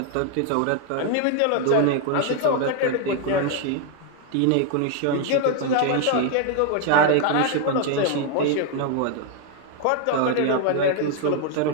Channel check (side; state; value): both; different; correlation 0.00